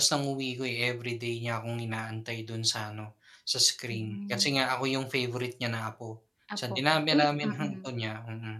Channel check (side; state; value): both; identical; correlation 1.00